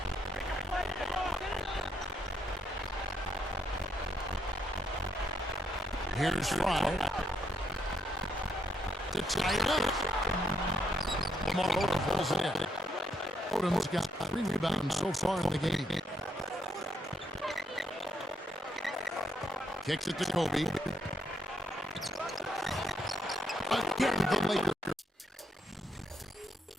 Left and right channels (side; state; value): both; normal; correlation 0.76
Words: Here's Fry. To tie it up. Lamar Odom pulls it in. Odom's got 3 rebounds so far in the game. Kicks it to Kobe. Again, the Lakers.